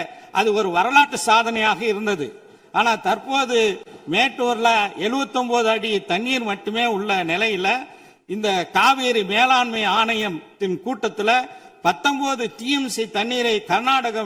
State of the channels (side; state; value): both; identical; correlation 1.00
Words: அது ஒரு வரலாற்று சாதனையாக இருந்தது. ஆனா தற்போது மேட்டூர்ல 79 அடி தண்ணீர் மட்டுமே உள்ள நிலையில இந்த காவேரி மேலாண்மை ஆணையத்தின் கூட்டத்தில் 19 டிஎம்சி தண்ணீரை